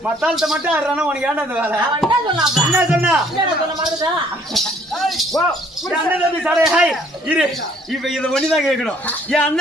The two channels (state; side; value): normal; both; correlation 0.61